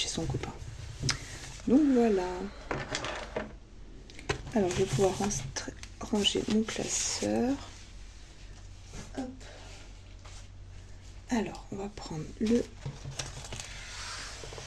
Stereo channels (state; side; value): identical; both; correlation 1.00